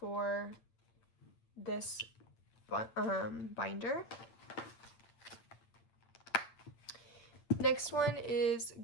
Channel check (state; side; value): late; right; 8.8 ms